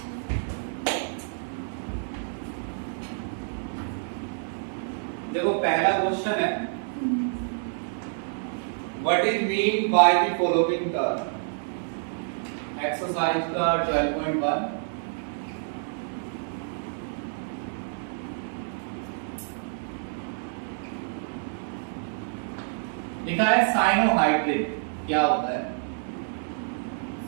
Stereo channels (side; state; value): left; silent; 56 dB below the other